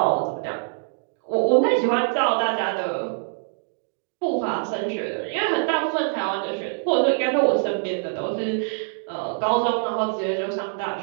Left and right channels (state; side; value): silent; left; digital silence